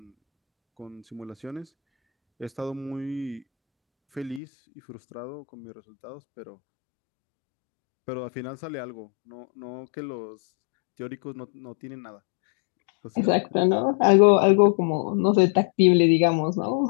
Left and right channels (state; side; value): drops out; right; at 4.4 s